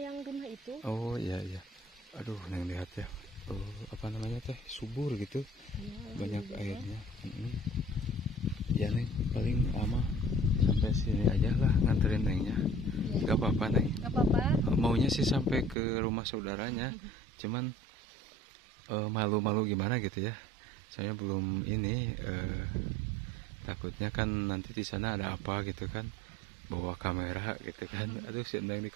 yang rumah itu. Oh iya. Aduh, Neng lihat ya. Apa namanya teh? Subur gitu. Iya, Banyak juga. airnya. Ya Neng, paling lama sampai sini aja lah nganterin Nengnya. Iya. Gak apa-apa Neng. Gak apa-apa. Maunya sih sampai ke rumah saudaranya. Cuman malu-malu gimana gitu ya. Saya belum ini. Takutnya kan nanti di sana ada apa gitu kan, bawa kamera gitu kan. Aduh, si Neng di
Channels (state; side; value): drops out; left; at 15.8 s